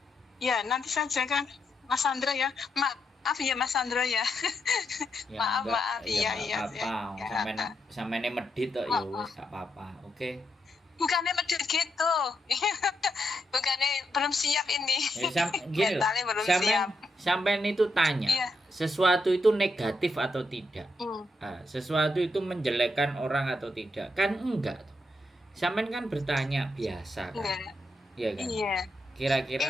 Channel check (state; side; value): normal; both; correlation 0.82